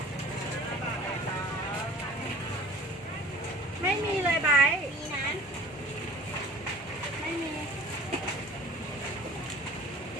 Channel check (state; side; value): normal; both; correlation 0.48